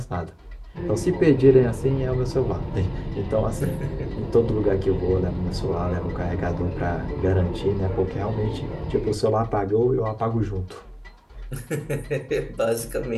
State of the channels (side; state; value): both; identical; correlation 1.00